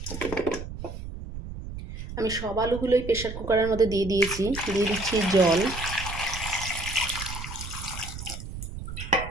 আমি সব আলুগুলোই প্রেসার কুকারের মধ্যে দিয়ে দিয়েছি। দিয়ে দিচ্ছি জল,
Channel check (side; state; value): right; noise; rumble, 9 dB below the sound